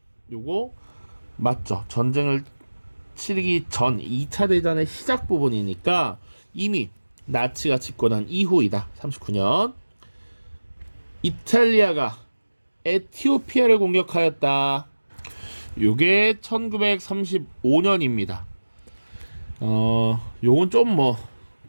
요거 맞죠? 전쟁을 치르기 전 2차 대전의 시작 부분이니까 이미 나치가 집권한 이후이다. 39년. 이탈리아가 에티오피아를 공격하였다. 요게 1935년입니다. 요건 좀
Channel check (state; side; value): inverted; both; correlation -1.00